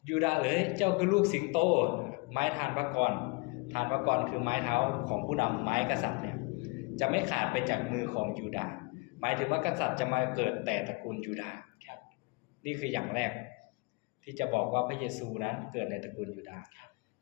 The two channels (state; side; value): quieter; right; 29.4 dB